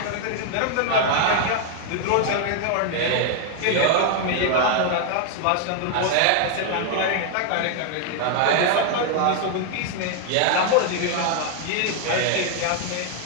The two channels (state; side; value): different; both; correlation 0.00